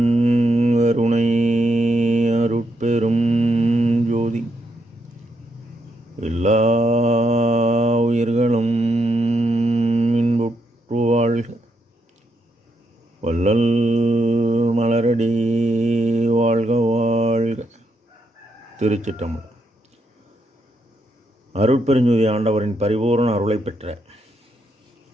கருணை அருட்பெரும் ஜோதி எல்லா உயிர்களும் இன்புற்று வாழ்க. வள்ளல் மலரடி வாழ்க வாழ்க. திருச்சிற்றம்பலம். அருட்பெருஞ்சோதி ஆண்டவரின் பரிபூரண அருளை பெற்ற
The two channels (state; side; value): normal; both; correlation 0.79